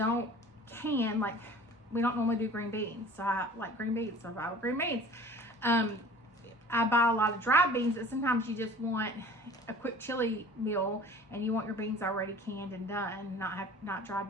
can, like we don't normally do green beans, so I like green beans, so I buy green beans. I buy a lot of dried beans, that sometimes you just want a quick chili meal and you want your beans already canned and done, not dried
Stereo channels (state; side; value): normal; both; correlation 0.45